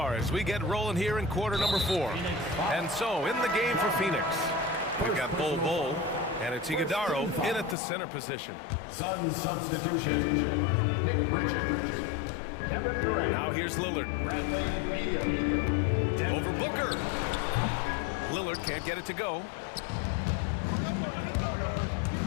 as we get rolling here in quarter number 4. And so, in the game for Phoenix, we've got Bull, and it's Iguodaro in at the center position. Sun substitution, Nick Richards. Kevin Durant. Now here's Lillard. Over Booker. Lillard can't get it to go.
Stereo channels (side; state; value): right; drops out; at 7.8 s